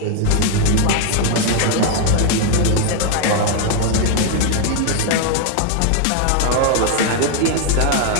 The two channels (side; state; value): both; different; correlation 0.00